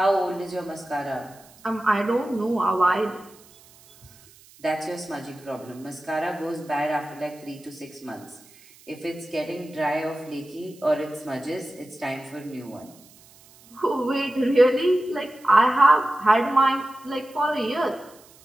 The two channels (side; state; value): right; noise; hiss, 25 dB below the sound